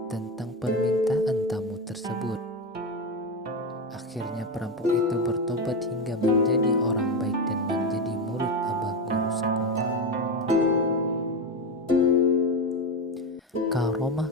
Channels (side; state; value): both; normal; correlation 0.15